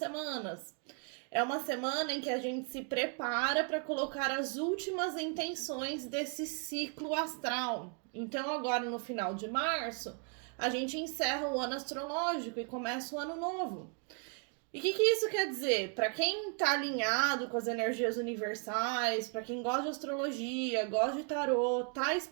É uma semana em que a gente se prepara para colocar as últimas intenções desse ciclo astral. Então, agora no final de março, a gente encerra o ano astrológico e começa o ano novo. E o que isso quer dizer? Para quem está alinhado com as energias universais, para quem gosta de astrologia, gosta de tarô, tá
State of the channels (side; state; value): left; quieter; 38.7 dB